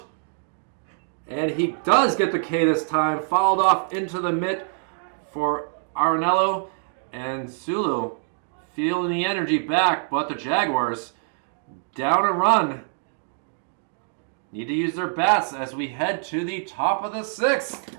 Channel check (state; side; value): silent; left; digital silence